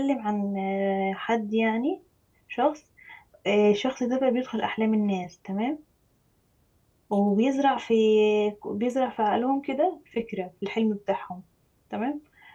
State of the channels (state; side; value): identical; both; correlation 1.00